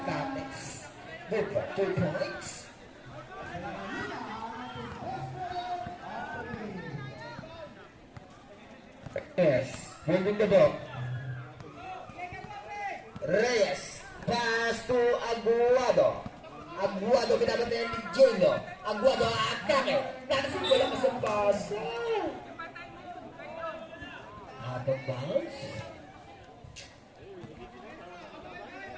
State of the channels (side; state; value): both; identical; correlation 1.00